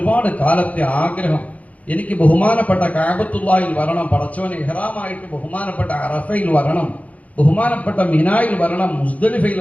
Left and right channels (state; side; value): late; right; 0.069 ms